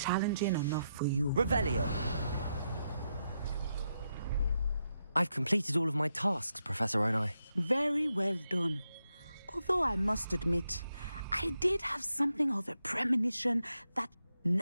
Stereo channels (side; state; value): both; inverted; correlation -0.84